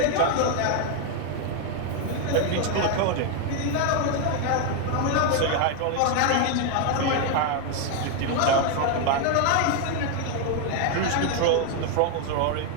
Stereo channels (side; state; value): both; different; correlation 0.01